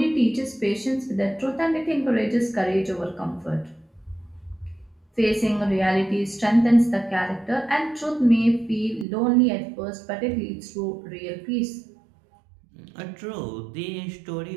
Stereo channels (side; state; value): left; drops out; at 9.1 s